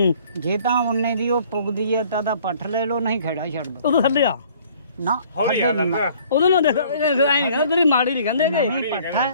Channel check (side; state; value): both; inverted; correlation -0.56